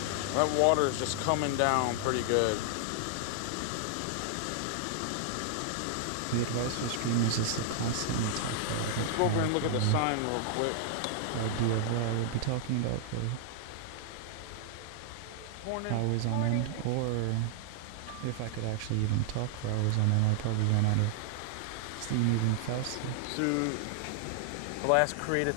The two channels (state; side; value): different; both; correlation -0.01